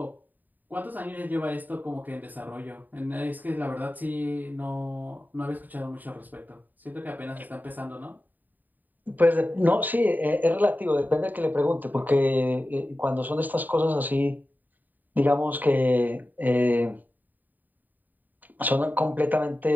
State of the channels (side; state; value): left; late; 0.087 ms